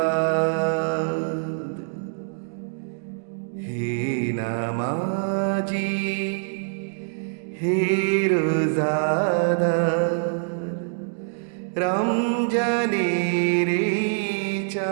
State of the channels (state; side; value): silent; left; digital silence